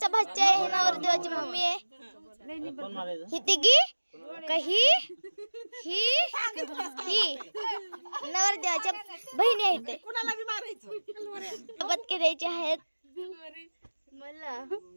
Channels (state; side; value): inverted; both; correlation -1.00